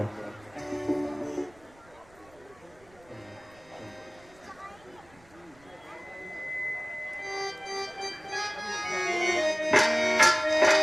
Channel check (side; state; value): right; noise; rumble, 27 dB below the sound